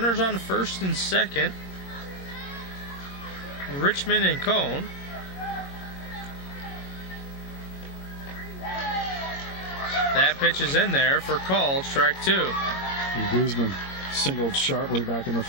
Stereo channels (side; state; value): right; late; 22 ms